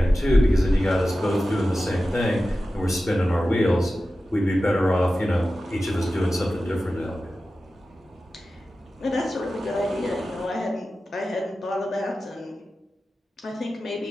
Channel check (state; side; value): normal; both; correlation 0.94